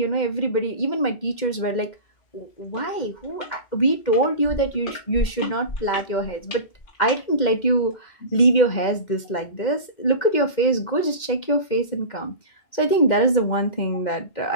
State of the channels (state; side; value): late; right; 2.1 ms